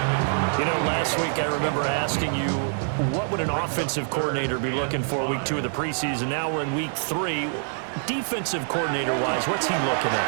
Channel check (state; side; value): silent; left; digital silence